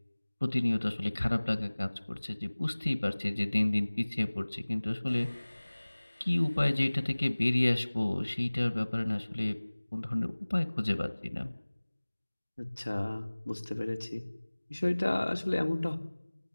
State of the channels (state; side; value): inverted; both; correlation -1.00